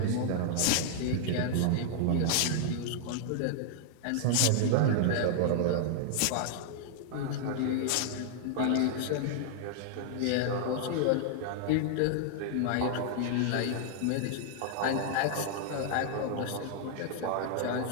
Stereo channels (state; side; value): different; both; correlation -0.01